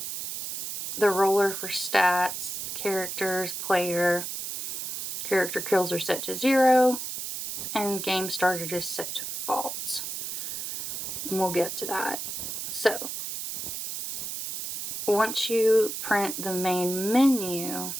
the roller for stats, characters, player, character kills are set to 0, and game started is set to false. And we'll get to that. So, once you print the main menu,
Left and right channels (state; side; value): noise; right; hiss, 5 dB below the sound